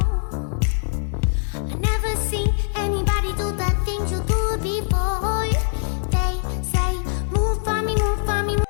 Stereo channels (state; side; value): silent; right; digital silence